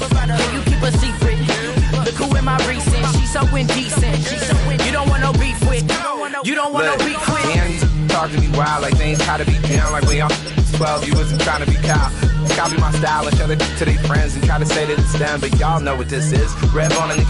you keep a secret? Look who in my recent. She's so indecent. You don't want no beef with. You don't want no beef with. Damn, talk to me wild like things gotta be down like we all 12. You wasn't trying to be cow. Copy my style and show it to their friends and try to say that it's them, but y'all know what this is. Red bone on the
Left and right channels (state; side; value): identical; both; correlation 1.00